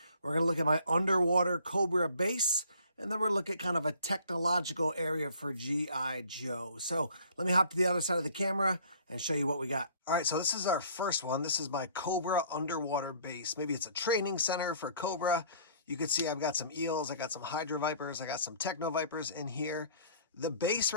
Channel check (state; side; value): inverted; both; correlation -0.54